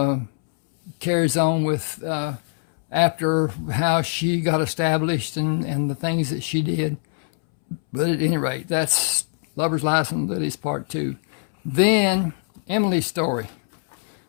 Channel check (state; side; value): silent; right; 64 dB below the other